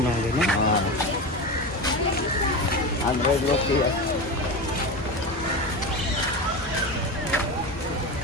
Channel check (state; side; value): normal; both; correlation 0.22